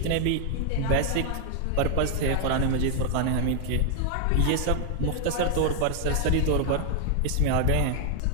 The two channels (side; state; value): both; different; correlation 0.00